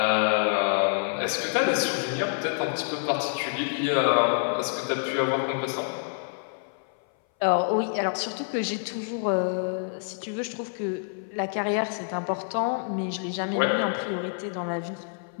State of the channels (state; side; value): silent; right; 57 dB below the other